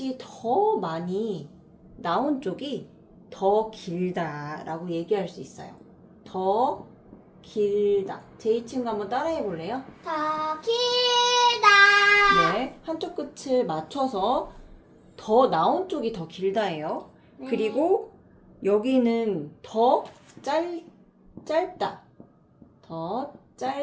더 많이 나온 쪽이 더 길다라고 얘기할 수 있어요. 더 길다. 제 친구 한번 따라해 볼래요? 더 길다. 네, 한쪽 끝을 맞춰서 더 나온 쪽이 더 길다예요. 네. 그리고 여기는 더 짧다. 더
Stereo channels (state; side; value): identical; both; correlation 1.00